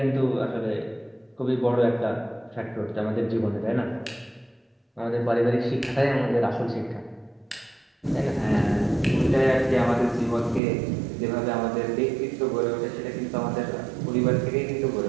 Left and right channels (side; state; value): left; drops out; at 10.6 s